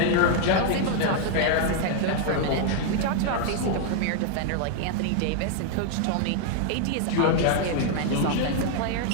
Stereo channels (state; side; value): different; both; correlation 0.00